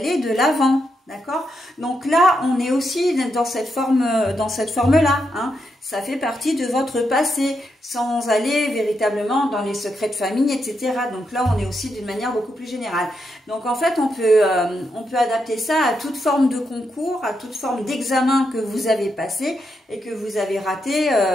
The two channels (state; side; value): normal; both; correlation 0.83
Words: de l'avant, d'accord? Donc là, on est aussi dans cette forme-là, hein. Ça fait partie de votre passé, sans aller véritablement dans les secrets de famille, etc. Donc là, on est aussi d'une manière beaucoup plus générale. Donc en fait, on peut adapter ça à toute forme de concours, à toute forme d'examen que vous avez passé et que vous avez raté